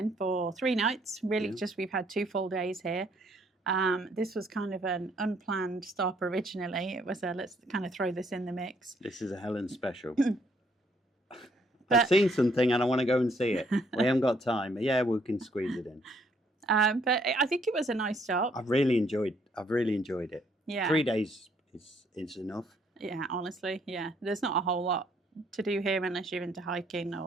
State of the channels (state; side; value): normal; both; correlation 0.67